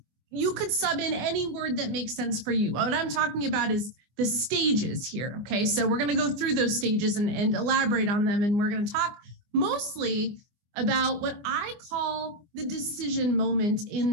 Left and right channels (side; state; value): left; late; 24 ms